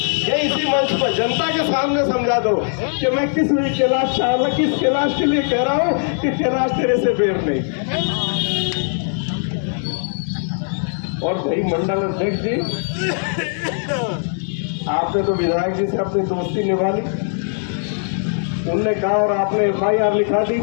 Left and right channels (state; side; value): silent; right; digital silence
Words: ये इसी मंच पर जनता के सामने समझा दो कि मैं किस कैलाश चावला किस कैलाश के लिए कह रहा हूं कि कैलाश तेरे से बेर नहीं। और भाई मंडल अध्यक्ष जी, आपने तो विधायक जी से अपनी दोस्ती निभा ली, उनने कहा और आपने FIR लिखा दी,